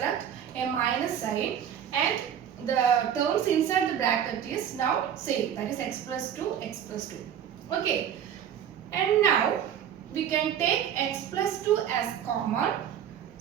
a minus sign, and the terms inside the bracket is now same, that is x plus 2, x plus 2. Okay, and now we can take x plus 2 as common.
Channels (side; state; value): left; quieter; 9.3 dB